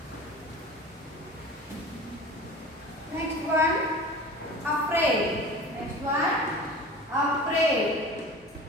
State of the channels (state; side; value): normal; both; correlation 0.37